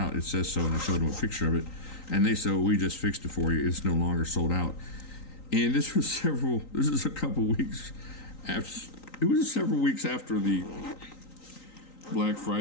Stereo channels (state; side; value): late; right; 3.9 ms